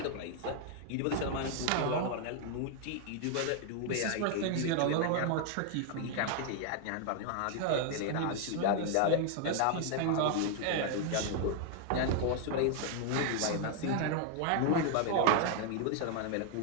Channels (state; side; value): different; both; correlation 0.00